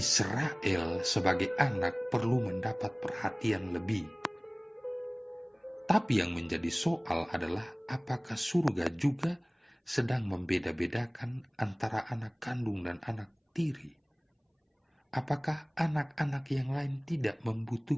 sebagai anak perlu mendapat perhatian lebih. Tapi yang menjadi soal adalah apakah surga juga sedang membeda-bedakan antara anak kandung dan anak tiri? Apakah anak-anak yang lain tidak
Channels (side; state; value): both; identical; correlation 1.00